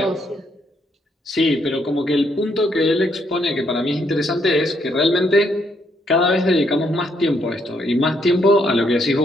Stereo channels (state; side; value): normal; both; correlation 0.73